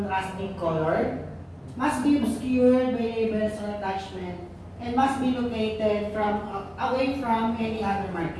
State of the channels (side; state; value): both; identical; correlation 1.00